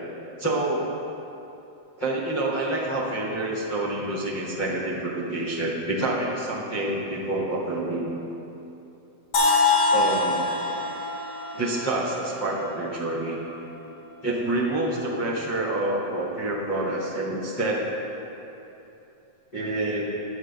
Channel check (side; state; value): right; late; 7.8 ms